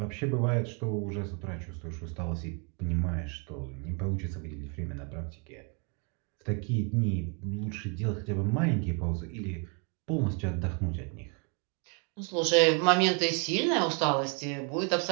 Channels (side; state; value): left; quieter; 36.1 dB